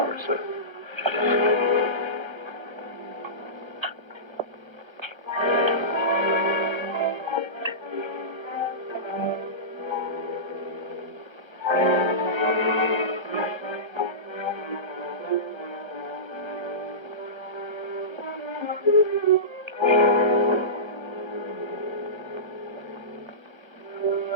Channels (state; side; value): late; left; 1.3 ms